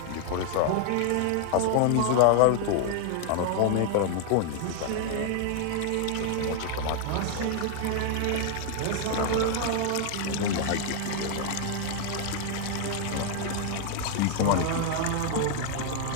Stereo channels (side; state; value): both; different; correlation 0.00